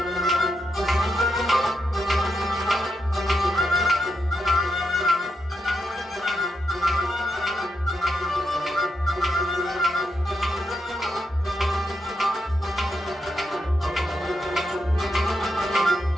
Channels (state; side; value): normal; both; correlation 0.83